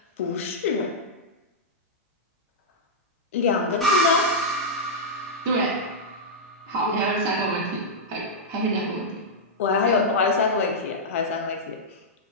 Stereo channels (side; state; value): both; normal; correlation -0.09